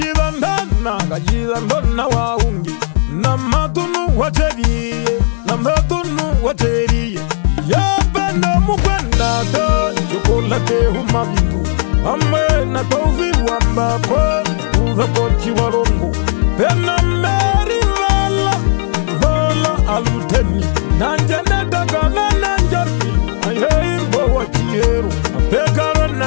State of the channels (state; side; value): silent; right; digital silence